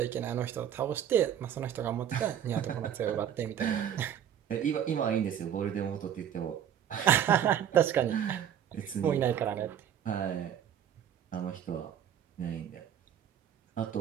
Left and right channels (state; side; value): quieter; left; 9.5 dB